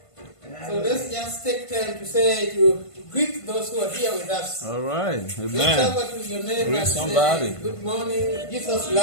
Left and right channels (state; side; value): late; right; 1.5 ms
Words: So let's just take time to say, to greet those who are here with us. All right. Reach Amen. over to your neighbor Greet and somebody. say, "Good morning, Jesus